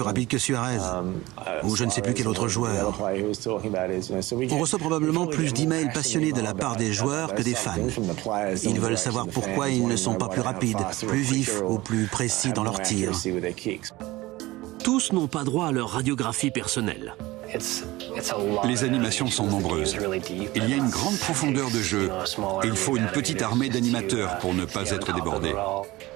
rapide que Suarez, ou je ne sais plus quel autre joueur. On reçoit probablement plus d'emails passionnés de la part des joueurs que des fans. Ils veulent savoir pourquoi ils ne sont pas plus rapides, plus vifs ou plus précis dans leurs tirs. Tous n'ont pas droit à leur radiographie personnelle. Les animations sont nombreuses. Il y a une grande profondeur de jeu. Il faut une petite armée d'animateurs pour ne pas être débordés.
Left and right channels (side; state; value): left; quieter; 19.3 dB